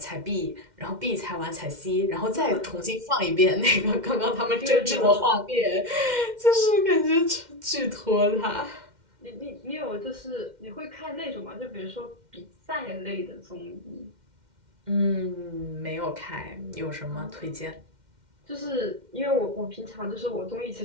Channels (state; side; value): late; left; 2.1 ms